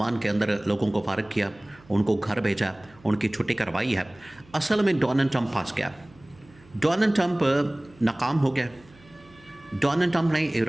के अंदर लोगों को फारिग किया, उनको घर भेजा, उनकी छुट्टी करवाई है, असल में डोनाल्ड ट्रंप फंस गया। डोनाल्ड ट्रंप नाकाम हो गया। डोनाल्ड ट्रंप ने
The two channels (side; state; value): right; noise; hum, 26 dB below the sound